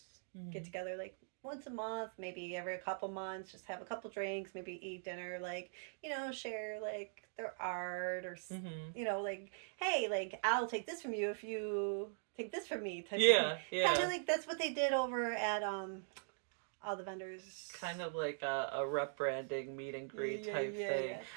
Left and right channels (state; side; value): silent; left; digital silence